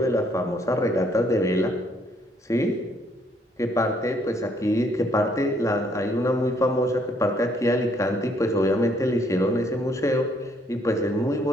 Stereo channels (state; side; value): normal; both; correlation 0.67